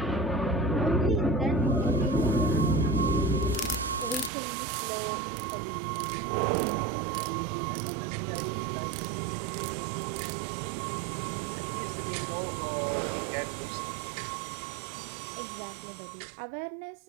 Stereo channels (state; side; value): drops out; left; at 4.3 s